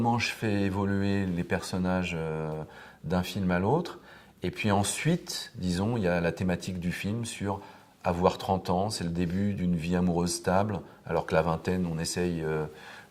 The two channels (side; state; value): both; identical; correlation 1.00